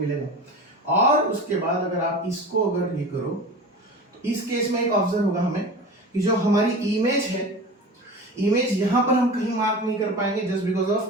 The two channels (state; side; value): normal; both; correlation 0.33